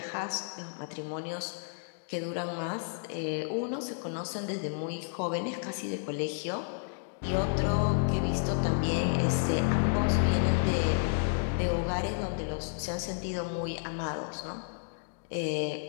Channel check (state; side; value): silent; right; digital silence